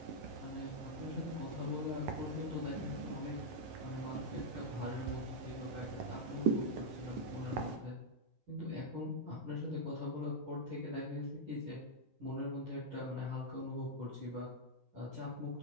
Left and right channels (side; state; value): left; late; 11 ms